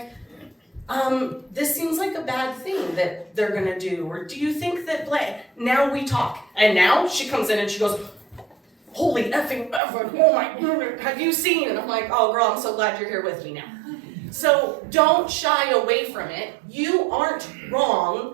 this seems like a bad thing that they're gonna do, or do you think that now we talk. And now she comes in and she goes, holy effing ever, oh my goodness, have you seen? And I'm like, oh girl, I'm so glad you're here with me now. So don't shy away from it. You aren't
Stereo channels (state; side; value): drops out; left; at 9.8 s